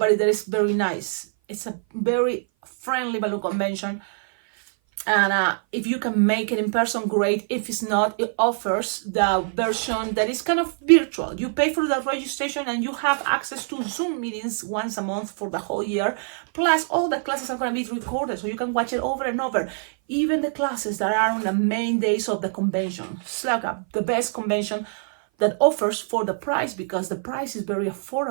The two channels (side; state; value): left; silent; 57 dB below the other